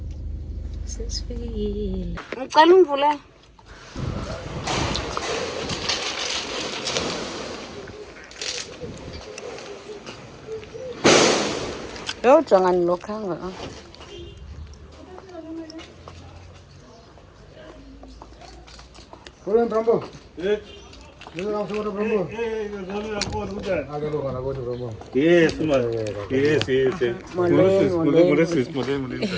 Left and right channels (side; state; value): both; identical; correlation 1.00